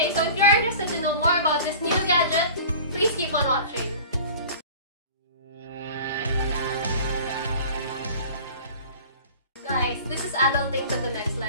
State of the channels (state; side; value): inverted; both; correlation -0.41